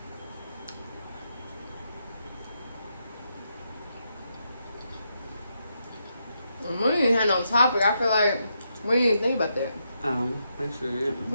We ain't had no topic. I feel like we didn't think about that. I sure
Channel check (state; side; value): inverted; both; correlation -0.81